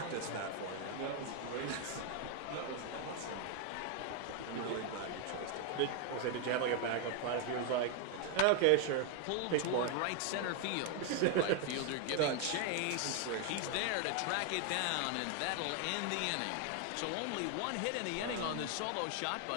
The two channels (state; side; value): different; both; correlation 0.01